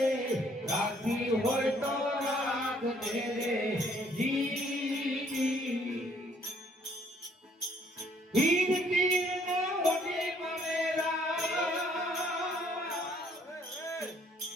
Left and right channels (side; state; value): both; normal; correlation 0.63